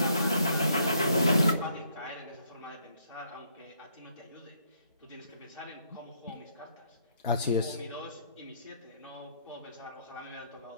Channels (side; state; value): both; inverted; correlation -0.70